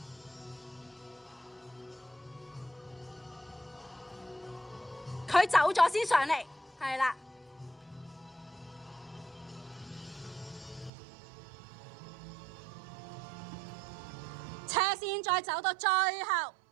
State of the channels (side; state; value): left; drops out; at 10.9 s